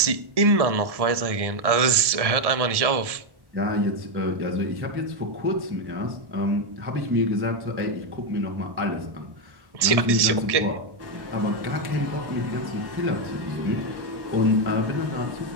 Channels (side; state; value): left; late; 1.7 ms